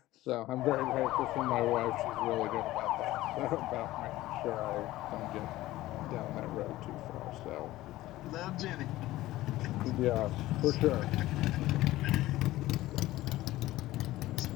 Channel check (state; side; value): quieter; right; 16.5 dB